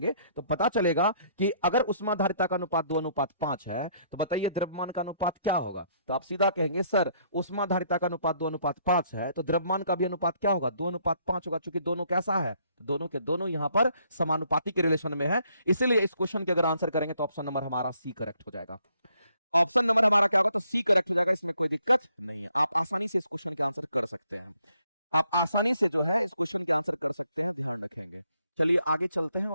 तो पता चलेगा कि अगर उष्माधारिता का अनुपात 2:5 है, तो बताइए द्रव्यमान का अनुपात क्या होगा। तो आप सीधा कहेंगे सर उष्माधारिता का अनुपात 2:5 है, तो द्रव्यमान का भी अनुपात क्या होगा, 2:5 होगा। चूंकि दोनों कैसा है, दोनों के दोनों यहां पर समानुपाती के रिलेशन में है। इसलिए इस क्वेश्चन के अगर आंसर करेंगे तो ऑप्शन नंबर हमारा सी करेक्ट हो जाएगा। ऑप्शन नंबर हमारा क्या होगा, तो सी करेक्ट हो जाएगा। इसमें कोई दिक्कत नहीं है, आप आसानी से इस क्वेश्चन के आंसर कर सकते हैं। आप आसानी से जो है इस क्वेश्चन के आंसर कर सकते हैं, ध्यान रखेंगे। चलिए आगे चलते हैं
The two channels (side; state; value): both; inverted; correlation -0.68